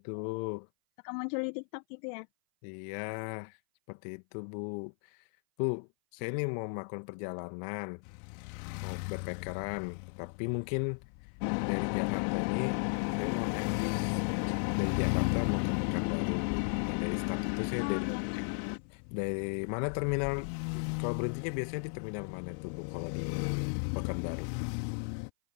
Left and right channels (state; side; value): silent; right; 54 dB below the other